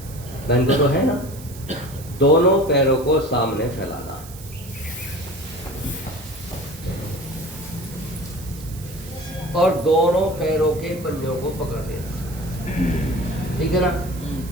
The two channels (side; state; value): right; noise; hiss, 17 dB below the sound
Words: बहन को तो है ना। दोनों पैरों को सामने फैलाना, और दोनों पैरों के पंजों को पकड़ देना, ठीक है ना।